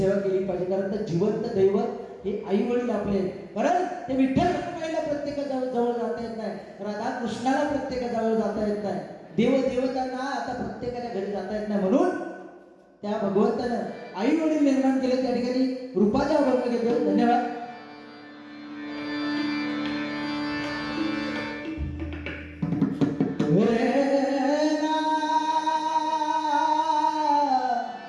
केली पाहिजे. कारण ते जिवंत दैवत हे आई वडील आपले. कारण ते विठ्ठल रखुमाईला प्रत्येका जवळ जाता येत नाही, राधा कृष्णाला प्रत्येका जवळ जाता येत नाही, देवदेवतांना आता प्रत्येकाच्या घरी जाता येत नाही. म्हणून त्या भगवंतानं आई वडील निर्माण केले. त्या ठिकाणी रूपाचा अभंग घेतो. धन्यवाद.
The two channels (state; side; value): identical; both; correlation 1.00